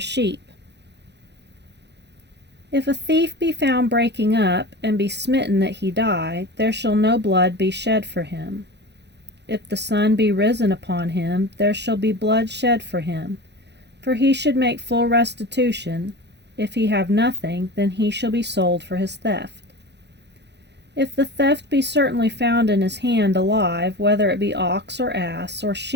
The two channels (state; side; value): late; left; 0.50 ms